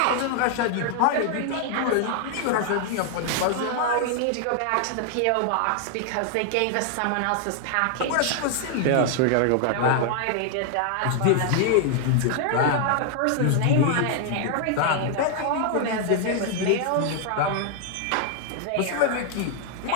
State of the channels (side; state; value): both; different; correlation 0.00